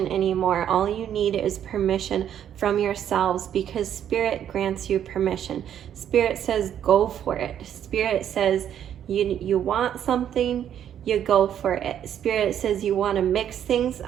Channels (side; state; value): left; quieter; 9.8 dB